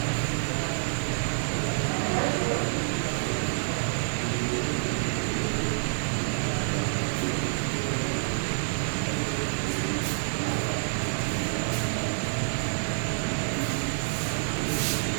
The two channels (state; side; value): silent; left; digital silence